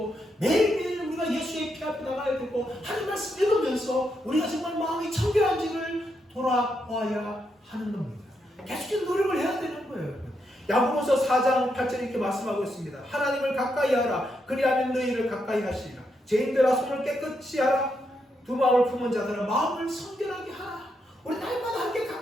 매일매일 우리가 예수의 피 앞에 나가야 되고 하나님 말씀 읽으면서 우리가 정말 마음이 청결한지를 돌아와야 하는 겁니다. 계속해서 노력을 해야 되는 거예요. 야고보서 4장 8절 이렇게 말씀하고 있습니다. 하나님을 가까이 하라. 그리하면 너희를 가까이 하시리라. 죄인들아 손을 깨끗이 하라. 두 마음을 품은 자들아 마음을 성결하게 하라. 우리 날마다 함께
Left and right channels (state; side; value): normal; both; correlation 0.81